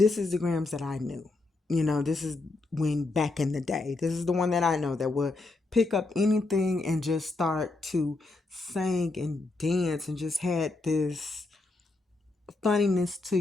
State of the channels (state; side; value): quieter; right; 3.3 dB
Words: is the gramz that I knew. This is when back in the day. This is the one that I know that would pick up anything and just start to sing and dance and just had this funniness to